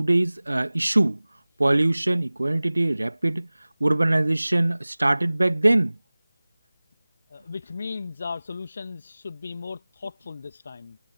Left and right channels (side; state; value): both; inverted; correlation -0.99